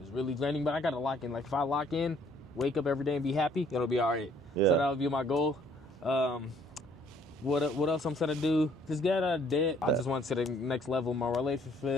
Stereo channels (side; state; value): both; normal; correlation 0.62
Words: really draining. But I got to lock in. Like, if I lock in, wake up every day and be happy, it'll be all right. Yeah. So that'll be my goal. What else I'm trying to do? Just get out of debt. I just want to the next level of my